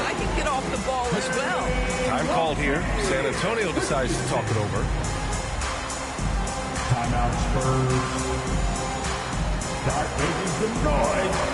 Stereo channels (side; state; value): both; identical; correlation 1.00